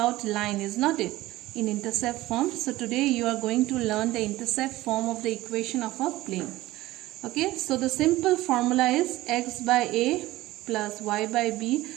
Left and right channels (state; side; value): quieter; left; 17.3 dB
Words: line, is not it, in intercept form. So today you are going to learn the intercept form of the equation of a plane. Okay, so the simple formula is x by a plus y by b